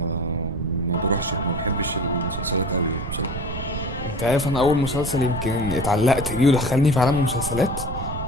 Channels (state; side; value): noise; right; rumble, 6 dB below the sound